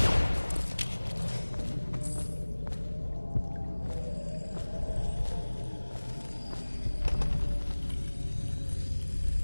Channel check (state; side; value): inverted; both; correlation -1.00